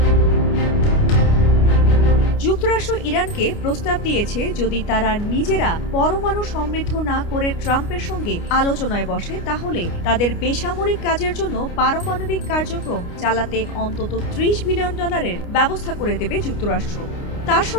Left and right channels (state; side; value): late; right; 29 ms